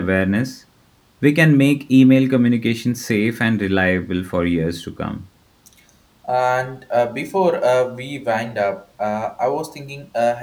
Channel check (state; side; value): identical; both; correlation 1.00